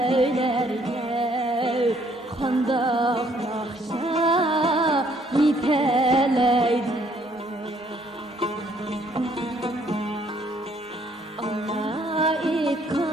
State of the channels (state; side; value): normal; both; correlation 0.65